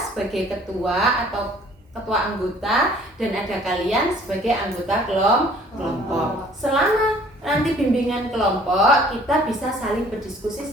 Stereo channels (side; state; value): both; normal; correlation 0.55